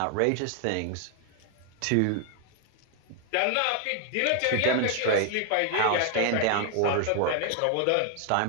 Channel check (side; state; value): both; different; correlation 0.00